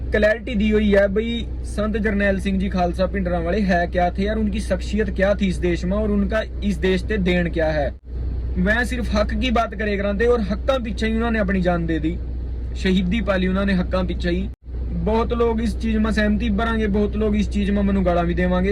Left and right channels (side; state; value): both; identical; correlation 1.00